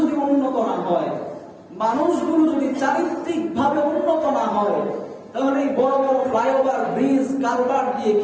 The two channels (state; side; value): identical; both; correlation 1.00